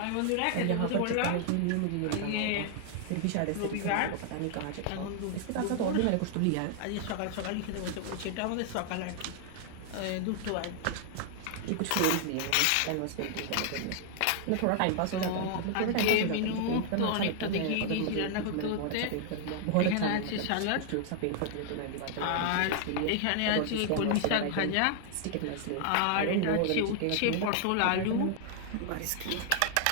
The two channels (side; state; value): both; different; correlation 0.00